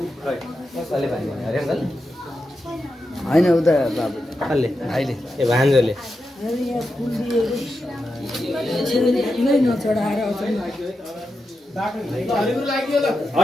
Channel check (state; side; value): normal; both; correlation 0.88